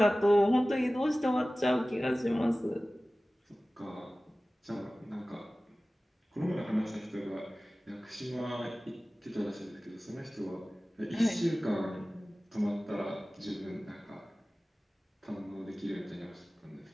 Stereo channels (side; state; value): both; normal; correlation 0.97